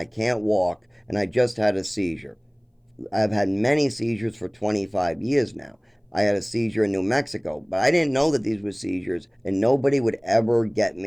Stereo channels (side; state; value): both; identical; correlation 1.00